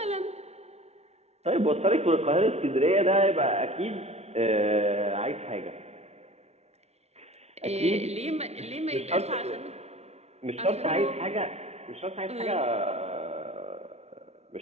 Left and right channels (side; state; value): left; late; 0.31 ms